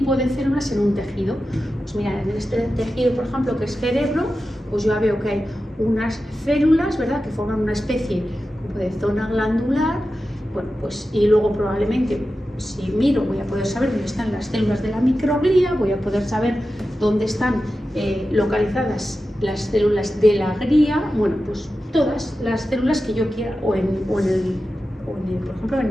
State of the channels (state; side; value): normal; both; correlation 0.92